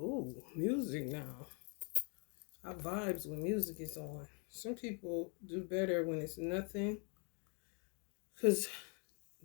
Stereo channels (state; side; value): quieter; right; 36.4 dB